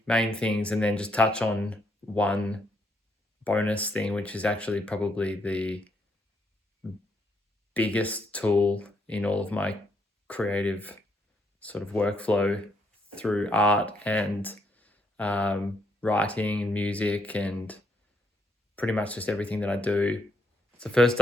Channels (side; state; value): both; normal; correlation 0.75